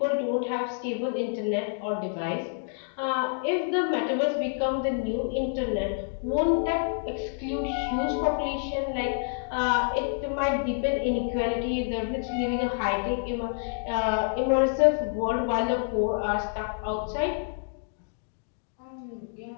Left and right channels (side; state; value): right; silent; digital silence